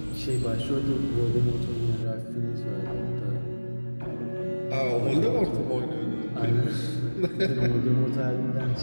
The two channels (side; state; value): both; inverted; correlation -1.00